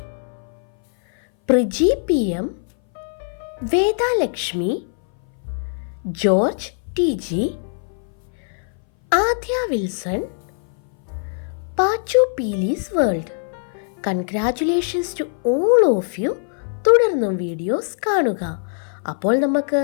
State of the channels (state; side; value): silent; right; 61 dB below the other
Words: Priji PM, Vedalakshmi, George TG, Adya Wilson, Pachu Peelis world. Congratulations to all of you. തുടർന്നും വീഡിയോസ് കാണുക. അപ്പോൾ നമുക്ക്